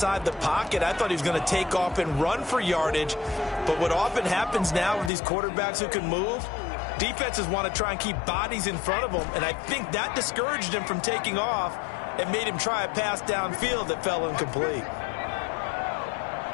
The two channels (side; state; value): right; drops out; at 5.1 s